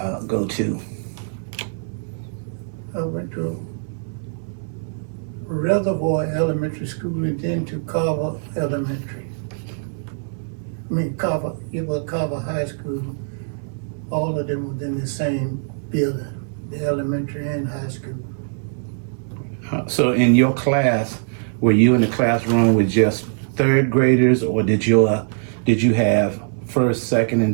to? I went to Reservoir Elementary School and then to Carver Elementary. Carver, it was Carver High School. All of them was in the same building, the elementary and high school. So in your class, were you in the classroom with just third graders, or did you have first, second,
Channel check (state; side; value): silent; left; 62 dB below the other